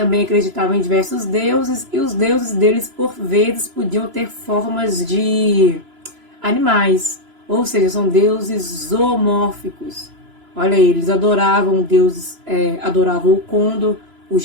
acreditavam em diversos deuses, e os deuses deles, por vezes, podiam ter formas de animais, ou seja, são deuses zoomórficos. Olha aí, eles adoravam deuses, adoravam o condor, o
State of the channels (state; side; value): late; left; 3.0 ms